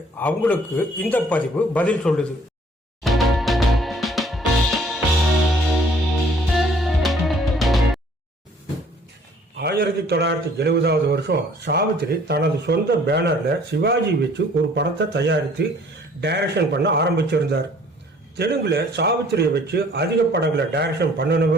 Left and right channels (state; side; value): normal; both; correlation 0.57